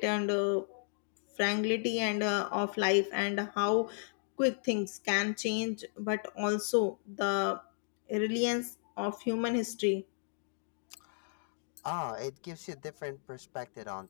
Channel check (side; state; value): right; silent; digital silence